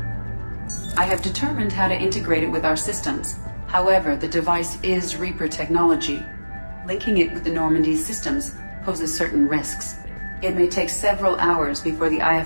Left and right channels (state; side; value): inverted; both; correlation -1.00